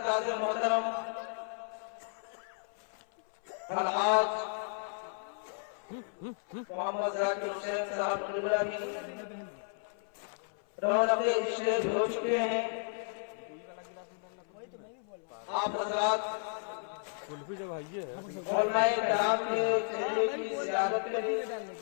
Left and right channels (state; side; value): silent; right; 55 dB below the other